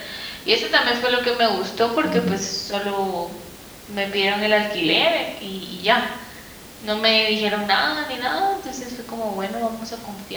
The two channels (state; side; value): identical; both; correlation 1.00